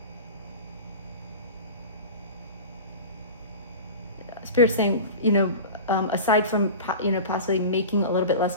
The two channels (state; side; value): inverted; both; correlation -0.33